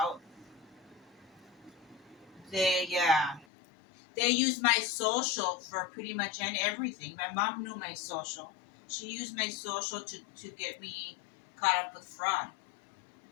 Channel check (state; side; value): drops out; right; at 3.5 s